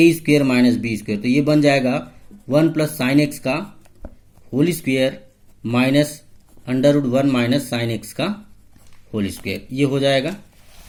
square minus b square. तो ये बन जाएगा 1 प्लस साइन एक्स का whole square minus √1 minus sine x का होल स्क्वेयर, ये हो जाएगा।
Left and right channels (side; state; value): both; identical; correlation 1.00